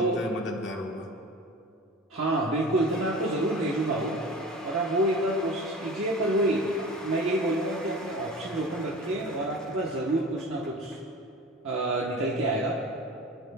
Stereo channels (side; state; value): both; normal; correlation 0.36